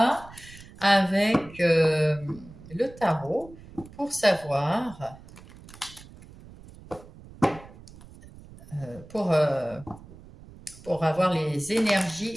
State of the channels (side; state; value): right; noise; rumble, 20 dB below the sound